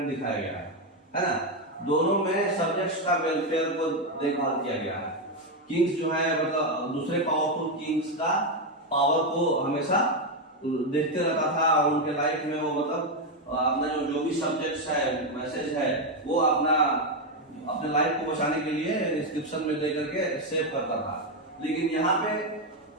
दिखाया गया है ना। दोनों में सब्जेक्ट्स का वेलफेयर को देखभाल किया गया है। किंग्स जो है मतलब दूसरे पावरफुल किंग्स का पावर को हमेशा देखते रहता था, और उनके लाइफ में वो मतलब अपना जो भी सब्जेक्ट्स है, मैसेज है, वो अपने लाइफ को बचाने के लिए इंस्क्रिप्शन में दे करके सेव करता था। लेकिन यहाँ पे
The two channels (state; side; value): normal; both; correlation 0.06